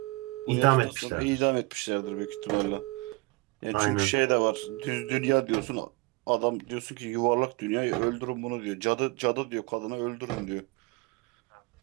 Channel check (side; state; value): left; quieter; 25.1 dB